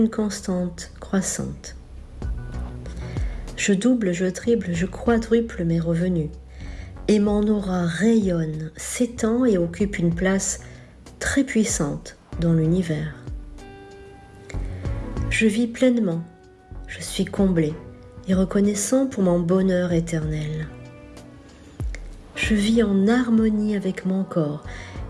constante croissante. Je double, je triple, je quadruple mes revenus et mon aura rayonne, s'étend et occupe une place très puissante dans l'univers. Je vis pleinement, je suis comblé et reconnaissant pour mon bonheur éternel. Je vis en harmonie avec mon corps,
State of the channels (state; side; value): identical; both; correlation 1.00